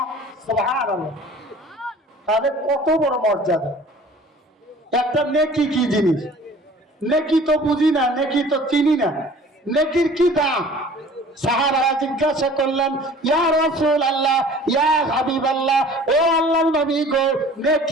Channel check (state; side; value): normal; both; correlation 0.47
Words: সুবহানাল্লাহ। তাহলে কত বড় মর্যাদা! একটা নেকি কি জিনিস? নেকি তো বুঝি না, নেকি তো চিনি না, নেকির কি দাম? সাহাবারা জিজ্ঞাসা করলেন, ইয়া রাসূলুল্লাহ, ইয়া হাবিবাল্লাহ, ও আল্লাহর নবী গো,